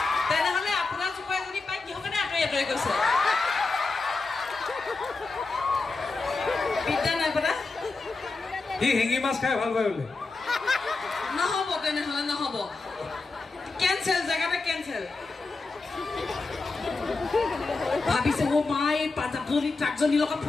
তেনেহ'লে আপোনাৰ জোপাই যদি পাই কিহৰ কাৰণে আঁতৰি আঁতৰি গৈছে বিদ্যা নাই পতা সি শিঙি মাছ খাই ভাল পায় বোলে নহ'ব তেনেহ'লে নহ'ব কেঞ্চেল জেগাতে কেঞ্চেল ভাবিছে অ' মা এই পাঞ্জাবজনী ট্ৰাকজনীৰ লগত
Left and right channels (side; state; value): right; quieter; 3.8 dB